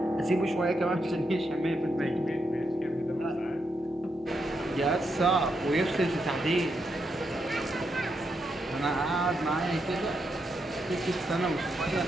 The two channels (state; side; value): normal; both; correlation 0.82